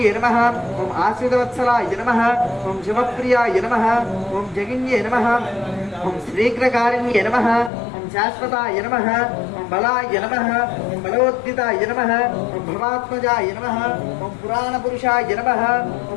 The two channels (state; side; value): drops out; right; at 7.7 s